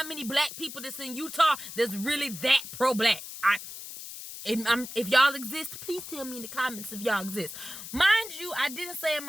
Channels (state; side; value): noise; left; hiss, 11 dB below the sound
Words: many black people that's in Utah that's really that pro-black. If y'all exist, please tell me in the comments if y'all exist. Mind you, I didn't say in